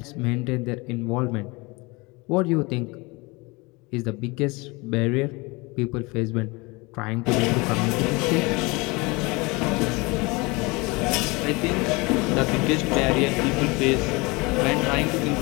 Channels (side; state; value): right; quieter; 25.6 dB